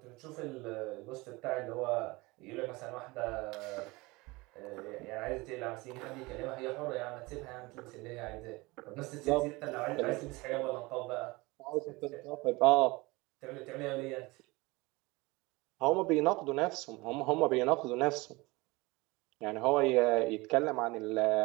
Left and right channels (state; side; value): quieter; left; 23.2 dB